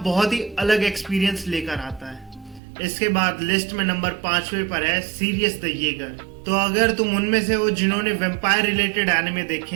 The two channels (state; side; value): drops out; left; at 2.6 s